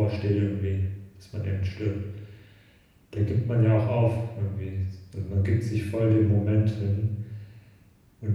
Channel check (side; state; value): both; identical; correlation 1.00